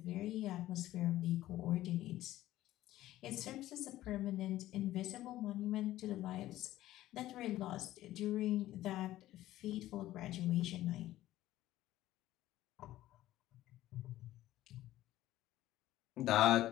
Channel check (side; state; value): right; quieter; 14.8 dB